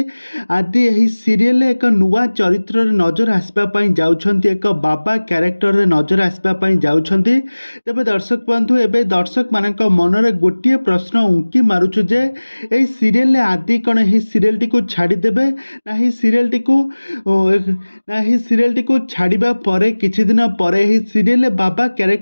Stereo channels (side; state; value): both; inverted; correlation -1.00